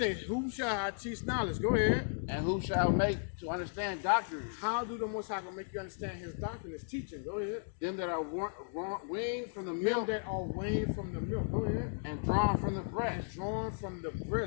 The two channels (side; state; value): right; silent; digital silence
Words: who shall I teach knowledge? Go ahead. And who shall make to understand doctrine? How do the Most High gonna make you understand his doctrine, his teaching? Go ahead. Them that are weaned from the Them milk that are weaned from the milk. Go ahead. and drawn from the breast. Drawn from the